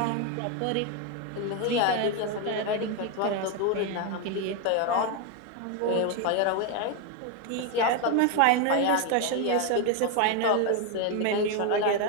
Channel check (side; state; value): both; different; correlation 0.01